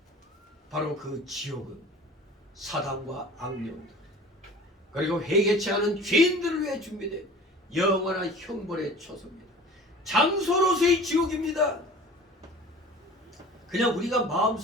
바로 그 지옥은 사단과 악령들 그리고 회개치 않은 죄인들을 위해 준비된 영원한 형벌의 처소입니다. 장소로서의 지옥입니다. 그냥 우리가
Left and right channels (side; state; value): both; normal; correlation 0.42